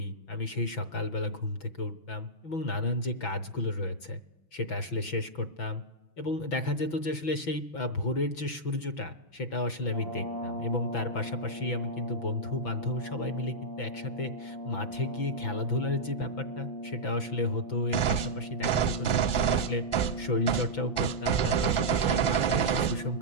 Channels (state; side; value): late; right; 6.0 ms